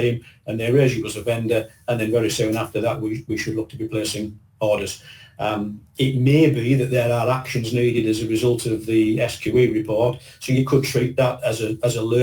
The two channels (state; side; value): identical; both; correlation 1.00